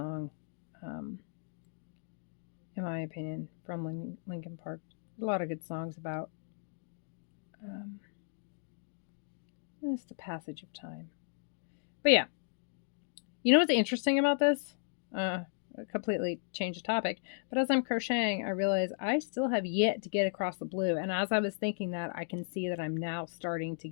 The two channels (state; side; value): silent; right; digital silence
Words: in my opinion, from Linkin Park. A lot of good songs about it's the passage of time. But yeah, you know what's interesting about this? Completely change the topic. But as I'm crocheting, I realize I still have yet to get across the blue. And as I was thinking that, I can see that I'm now starting to